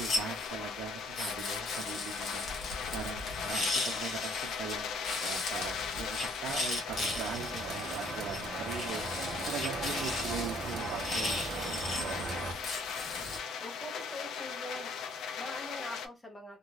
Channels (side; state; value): both; normal; correlation 0.62